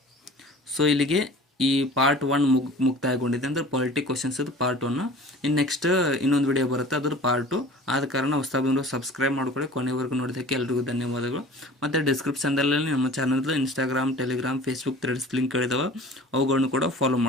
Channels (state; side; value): normal; both; correlation 0.43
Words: ಸೊ ಇಲ್ಲಿಗೆ ಈ ಪಾರ್ಟ್ 1 ಮುಕ್ತಾಯಗೊಂಡಿದೆ. ಅಂದರೆ ಪಾಲಿಟಿ ಕ್ವಶನ್ಸ್ ಇದು ಪಾರ್ಟ್ 1. ಇನ್ನು ನೆಕ್ಸ್ಟ್ ಇನ್ನೊಂದು ವಿಡಿಯೋ ಬರುತ್ತೆ, ಅದ್ರ ಪಾರ್ಟ್ 2. ಆದ ಕಾರಣ ಹೊಸದಾಗಿ ಸಬ್ಸ್ಕ್ರೈಬ್ ಮಾಡ್ಕೊಳ್ಳಿ. ಕೊನೆವರೆಗೂ ನೋಡೋದಕ್ಕೆ ಎಲ್ರಿಗೂ ಧನ್ಯವಾದಗಳು. ಮತ್ತು ಡಿಸ್ಕ್ರಿಪ್ಷನ್ದಲ್ಲಿ ನಮ್ಮ ಚಾನಲ್ದು ಇನ್ಸ್ಟಾಗ್ರಾಮ್, ಟೆಲಿಗ್ರಾಮ್, ಫೇಸ್ಬುಕ್ ಥ್ರೆಡ್ಸ್ ಲಿಂಕ್ಗಳಿದಾವೆ, ಅವುಗಳನ್ನು ಕೂಡ ಫಾಲೋ